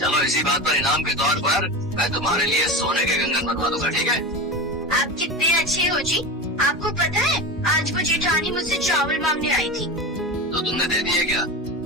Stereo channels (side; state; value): both; normal; correlation 0.25